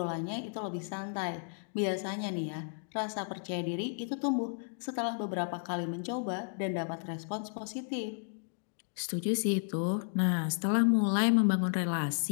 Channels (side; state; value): right; silent; digital silence